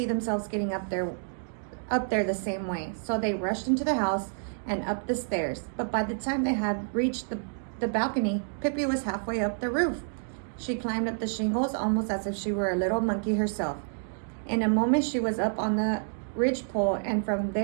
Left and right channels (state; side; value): silent; left; digital silence